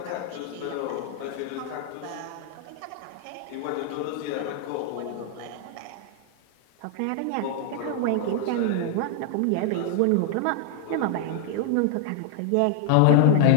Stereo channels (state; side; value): different; both; correlation 0.00